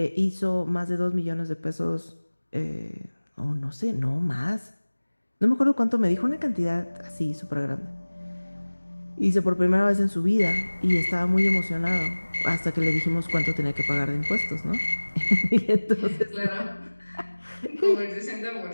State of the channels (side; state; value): both; inverted; correlation -1.00